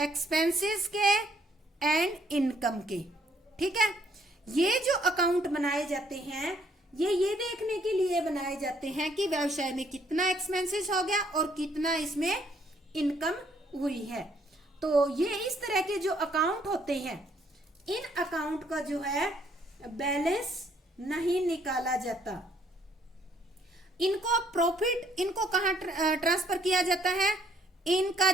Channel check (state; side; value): normal; both; correlation 0.67